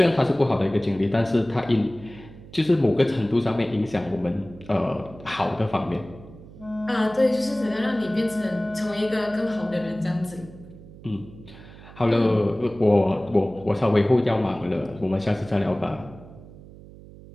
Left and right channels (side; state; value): right; noise; hum, 19 dB below the sound